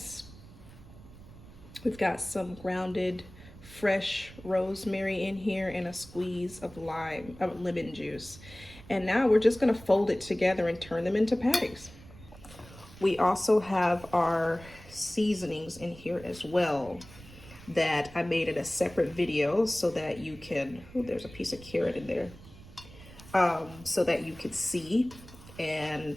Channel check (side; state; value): right; noise; rumble, 19 dB below the sound